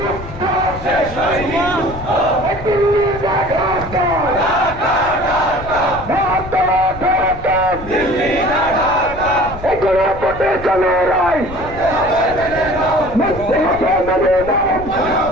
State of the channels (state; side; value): noise; left; rumble, 13 dB below the sound